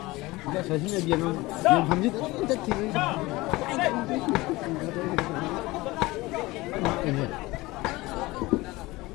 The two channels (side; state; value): right; quieter; 20.6 dB